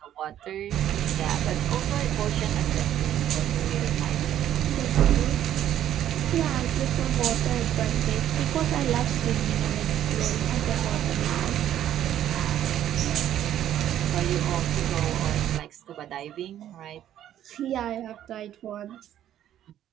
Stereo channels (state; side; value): quieter; left; 11.4 dB